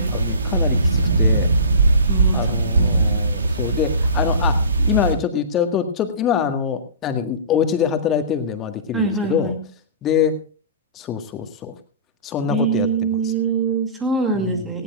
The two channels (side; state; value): both; inverted; correlation -0.34